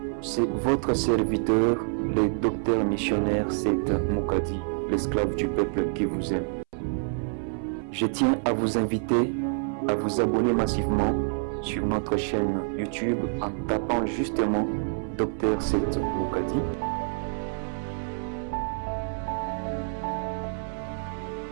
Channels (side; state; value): left; silent; 60 dB below the other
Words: C'est votre serviteur, le docteur missionnaire Seth Mukadi, l'esclave du peuple qui vous aime. Je tiens à vous inviter à vous abonner massivement sur notre chaîne YouTube en tapant justement Dr Seth Mukadi.